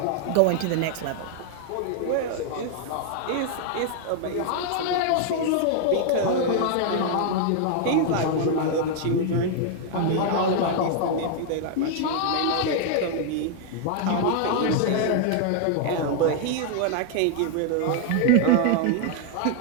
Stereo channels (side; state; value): both; different; correlation 0.00